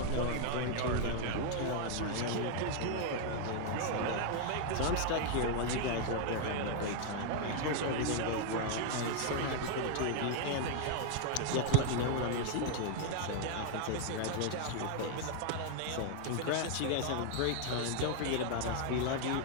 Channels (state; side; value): different; both; correlation 0.00